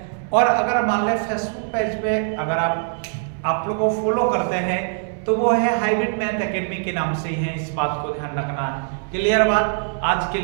और अगर मान लें फेसबुक पेज पे अगर आप लोग को फॉलो करते हैं तो वो है हाइब्रिड मैथ एकेडमी के नाम से ही है। इस बात को ध्यान रखना। क्लियर बात? आज के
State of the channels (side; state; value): left; silent; 60 dB below the other